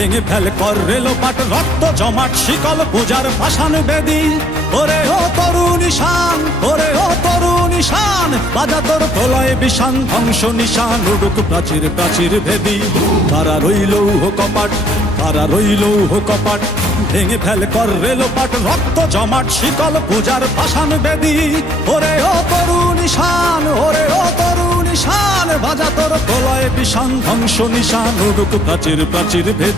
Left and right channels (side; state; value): both; normal; correlation 0.64